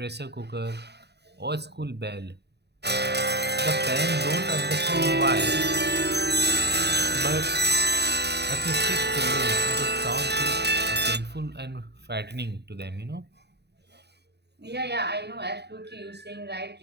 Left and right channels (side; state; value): left; late; 0.49 ms